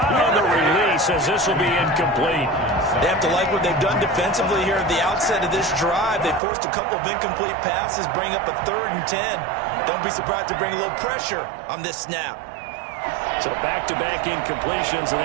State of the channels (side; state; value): left; drops out; at 6.4 s